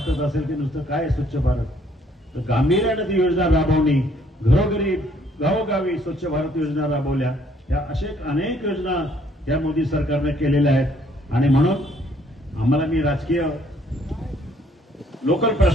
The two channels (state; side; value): normal; both; correlation 0.64